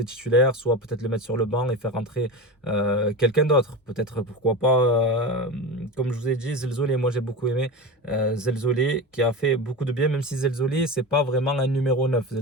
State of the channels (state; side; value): normal; both; correlation 0.25